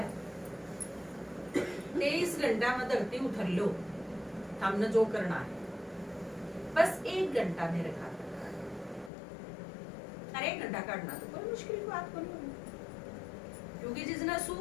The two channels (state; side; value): drops out; right; at 9.1 s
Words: 23 घंटा में धरती उठर लो, हमने जो करना है बस 1 घंटा मेरे खाते, अरे 1 घंटा काटना तो कोई मुश्किल बात को नहीं, क्योंकि जिसने